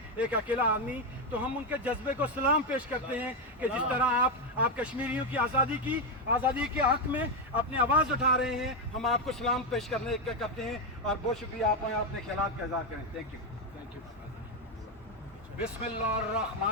एक अकेला आदमी। तो हम उनके जज्बे को सलाम पेश करते हैं कि जिस तरह आप कश्मीरियों की आज़ादी के हक में अपनी आवाज़ उठा रहे हैं, हम आपको सलाम पेश करते हैं और बहुत शुक्रिया। आप अपने ख्यालात का इजहार करें। Thank you.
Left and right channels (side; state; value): both; normal; correlation 0.07